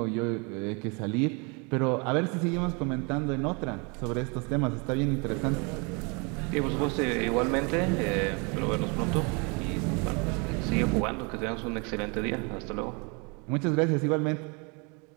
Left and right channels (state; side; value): quieter; left; 31.8 dB